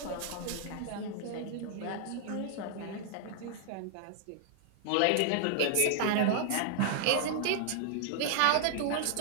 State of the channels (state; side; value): different; both; correlation 0.00